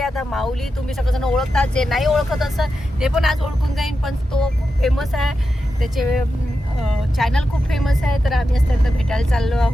आता माऊली तुम्ही सगळेजण ओळखतात, जे नाही ओळखत असं ते पण आज ओळखून जाईन. पण तो खूप फेमस आहे, त्याचे चॅनल खूप फेमस आहे. तर आम्ही असं त्यांना भेटायला चाललो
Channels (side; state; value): both; normal; correlation 0.89